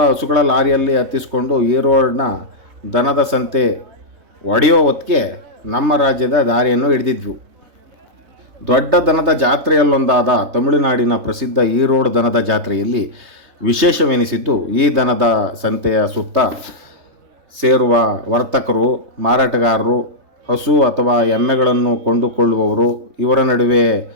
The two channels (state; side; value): late; left; 3.3 ms